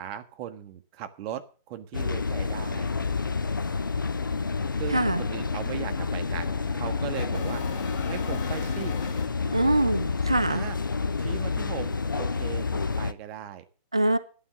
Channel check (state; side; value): inverted; both; correlation -0.78